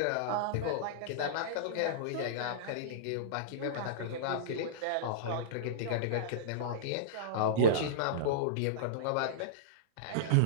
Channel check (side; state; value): both; different; correlation -0.04